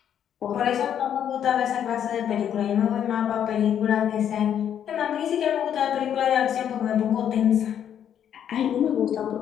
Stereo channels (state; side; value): quieter; right; 9.3 dB